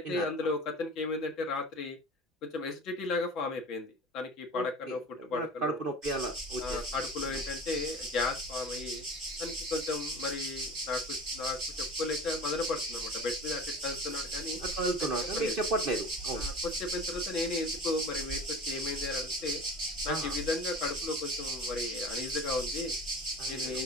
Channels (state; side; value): normal; both; correlation 0.37